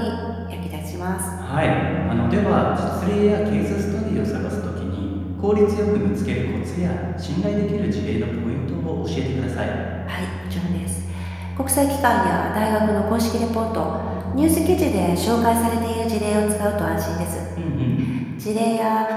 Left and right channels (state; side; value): identical; both; correlation 1.00